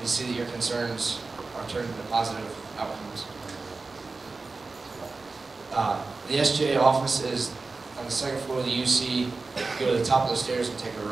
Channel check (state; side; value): quieter; left; 3.8 dB